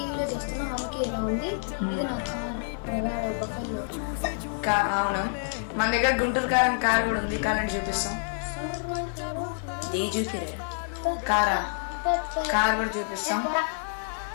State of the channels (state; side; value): silent; right; digital silence